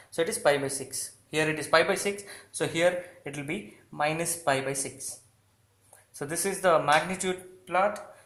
So it is pi by 6. Here it is pi by 6. So here it will be minus pi by 6. So this is the magnitude plot,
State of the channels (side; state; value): both; identical; correlation 1.00